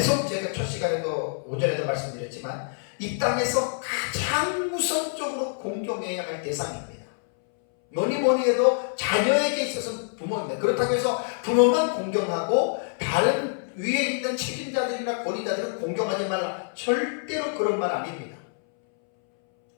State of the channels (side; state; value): right; silent; 61 dB below the other